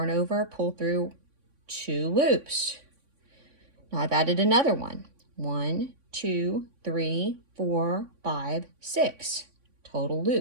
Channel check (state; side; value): late; left; 3.6 ms